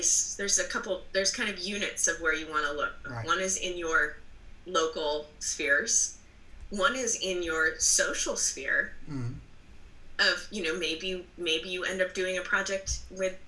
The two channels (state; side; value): identical; both; correlation 1.00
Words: There's kind of units of where you want to look. Right. One is in your local spheres. One is in your social sphere. Of, you know, maybe you end up doing a project with